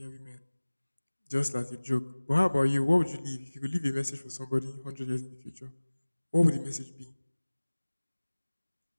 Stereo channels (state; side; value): inverted; both; correlation -1.00